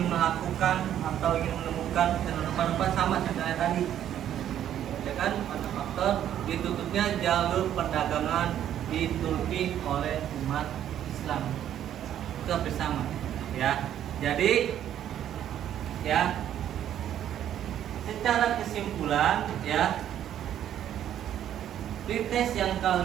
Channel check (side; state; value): left; quieter; 10.7 dB